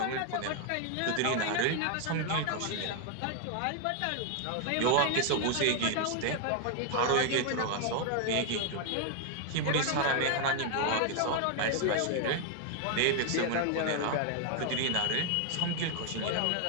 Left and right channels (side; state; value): both; different; correlation 0.00